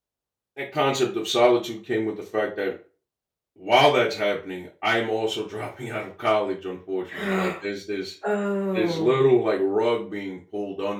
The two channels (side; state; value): both; identical; correlation 1.00